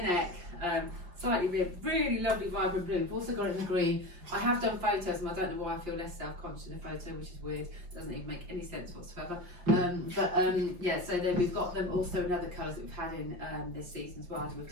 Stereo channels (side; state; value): left; late; 5.7 ms